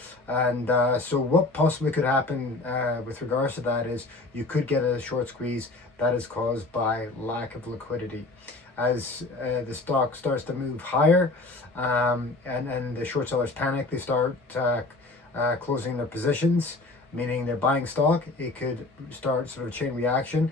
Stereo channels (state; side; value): quieter; right; 3.1 dB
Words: and so what possibly could happen with regards to that is you could get a short squeeze that is caused by lack of liquidity. As the stock starts to move higher and the short sellers panic, they start closing their positions, meaning they're buying stock. It could start sort of a chain reaction